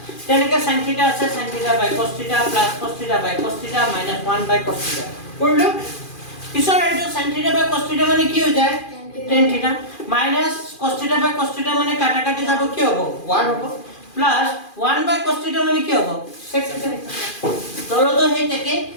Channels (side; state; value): right; late; 2.4 ms